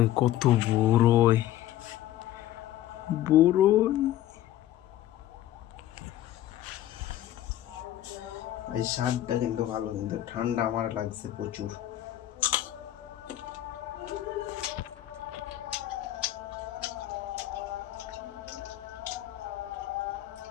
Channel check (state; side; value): quieter; right; 13.3 dB